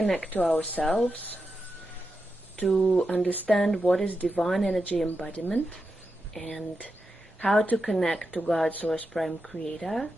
to ourselves, to understand what is divine energy embodiment and how to connect to God, Source, Prime Creator,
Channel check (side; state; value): both; normal; correlation 0.88